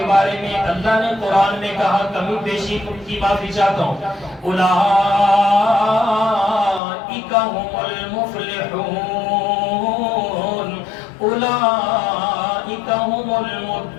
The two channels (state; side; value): drops out; right; at 6.8 s